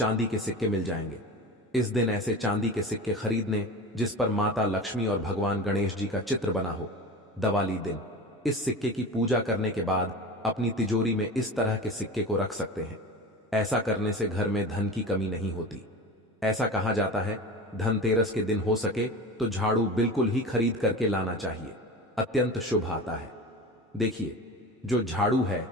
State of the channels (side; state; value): both; normal; correlation 0.31